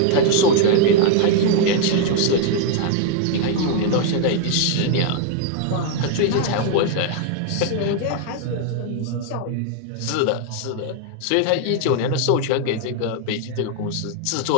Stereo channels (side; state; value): both; different; correlation 0.00